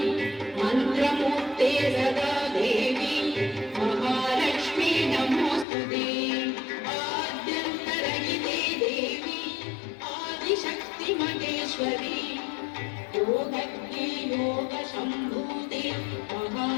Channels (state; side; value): drops out; right; at 5.7 s